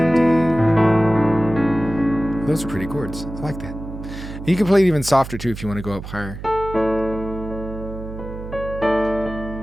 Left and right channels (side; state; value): right; noise; hum, 11 dB below the sound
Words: Those are pretty chords. I like that. And you can play it even softer too if you want to go up higher.